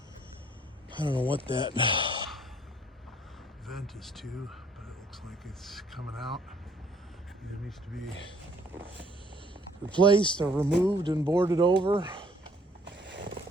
I don't know what that vent is to, but it looks like it's coming out. It needs to be replaced or removed and boarded over.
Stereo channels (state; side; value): normal; both; correlation 0.62